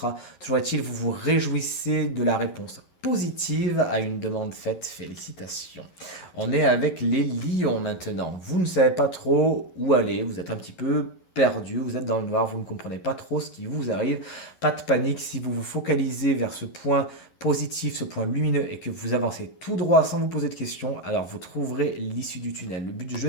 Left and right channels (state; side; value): late; right; 11 ms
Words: Toujours est-il, vous vous réjouissez de la réponse positive à une demande faite. Félicitations. On est avec les lions maintenant. Vous ne savez pas trop où aller, vous êtes un petit peu perdu, vous êtes dans le noir, vous ne comprenez pas trop ce qui vous arrive. Pas de panique, si vous vous focalisez vers ce point positif, ce point lumineux et que vous avancez tout droit sans vous poser de questions, alors vous trouverez l'issue du tunnel. Le but du jeu,